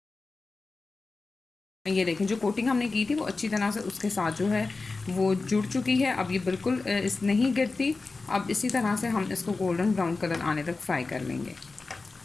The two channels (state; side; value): quieter; right; 3.8 dB